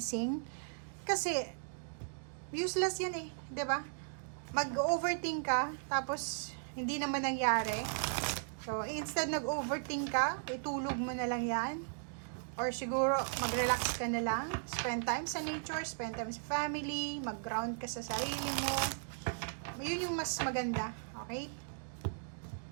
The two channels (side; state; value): left; silent; digital silence